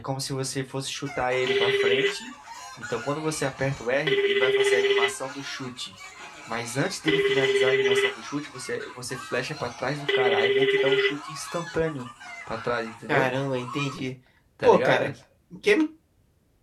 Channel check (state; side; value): identical; both; correlation 1.00